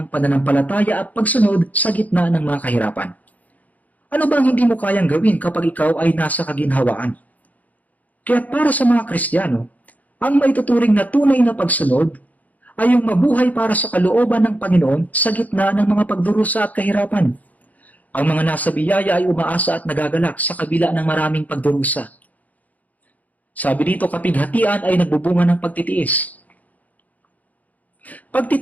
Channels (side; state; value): right; late; 0.077 ms